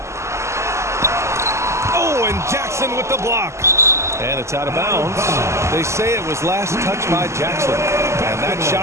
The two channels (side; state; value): left; late; 0.13 ms